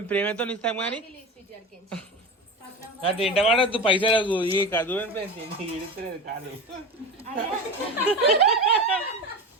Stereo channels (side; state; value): both; normal; correlation 0.26